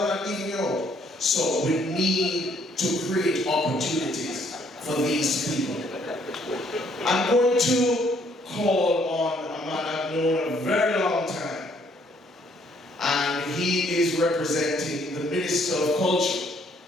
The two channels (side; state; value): both; normal; correlation 0.66